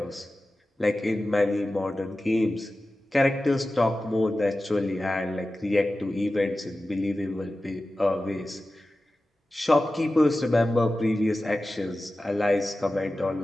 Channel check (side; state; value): both; normal; correlation 0.95